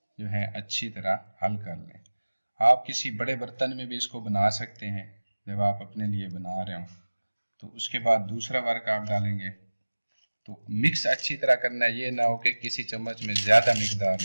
جو ہے اچھی طرح حل کر لیں۔ آپ کسی بڑے برتن میں بھی اس کو بنا سکتے ہیں جب آپ اپنے لیے بنا رہے ہوں۔ تو اس کے بعد دوسرا ورق آپ ڈالیں گے۔ تو مکس اچھی طرح کرنا ہے، یہ نہ ہو کہ کسی چمچ میں زیادہ مقدار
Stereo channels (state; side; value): inverted; both; correlation -1.00